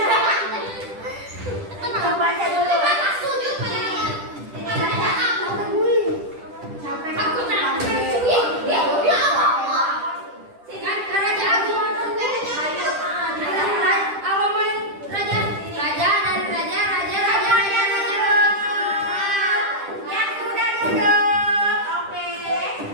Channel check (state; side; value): late; left; 10 ms